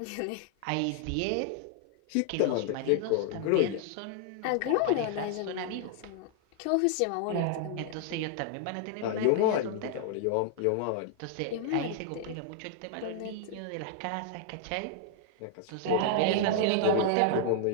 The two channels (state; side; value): different; both; correlation 0.00